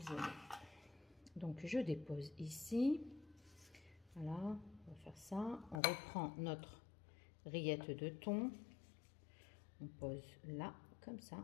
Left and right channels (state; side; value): drops out; right; at 5.8 s